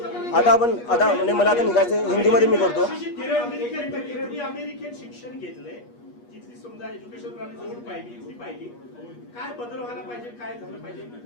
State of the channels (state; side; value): late; right; 8.3 ms